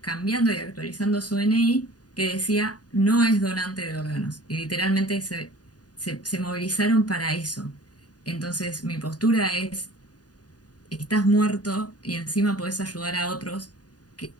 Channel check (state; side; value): late; right; 0.68 ms